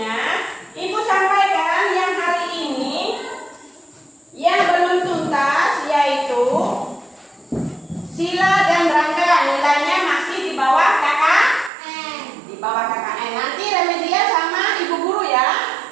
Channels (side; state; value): left; drops out; at 11.7 s